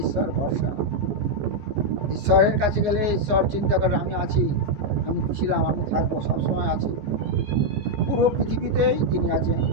ঈশ্বর ভরসা। ঈশ্বরের কাছে গেলে ঈশ্বর চিন্তা করে আমি আছি, আমি ছিলাম, আমি থাকবো, সবসময় আছি। পুরো পৃথিবীতেই তিনি আছেন,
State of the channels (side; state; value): left; late; 14 ms